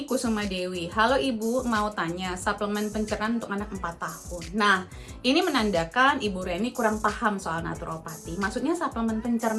Kusuma Dewi. Halo Ibu, mau tanya suplemen pencernaan untuk anak 4 tahun. Nah, ini menandakan Ibu Reni kurang paham soal naturopati. Maksudnya suplemen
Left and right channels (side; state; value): both; identical; correlation 1.00